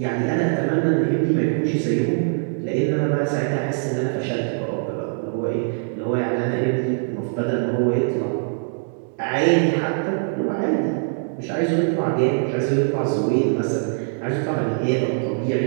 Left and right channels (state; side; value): silent; left; digital silence